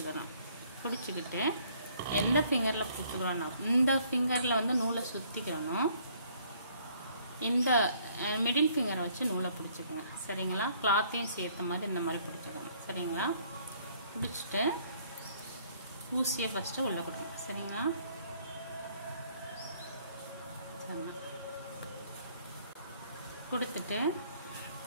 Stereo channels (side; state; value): both; inverted; correlation -0.62